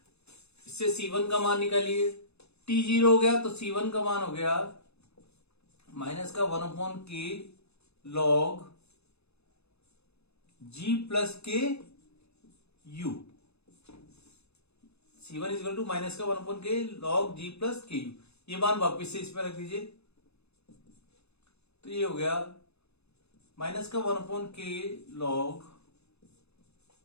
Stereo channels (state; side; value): late; right; 0.79 ms